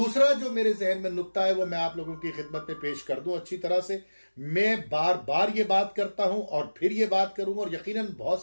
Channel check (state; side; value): inverted; both; correlation -1.00